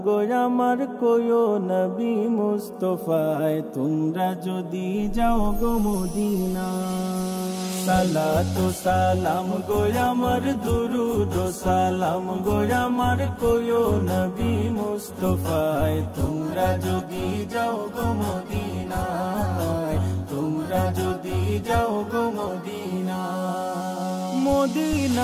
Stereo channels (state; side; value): identical; both; correlation 1.00